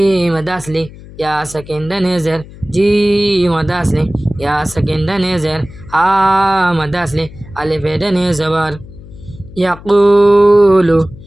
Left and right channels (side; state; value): left; noise; hum, 18 dB below the sound